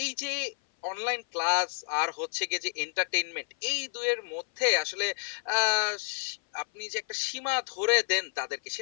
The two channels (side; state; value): right; silent; 56 dB below the other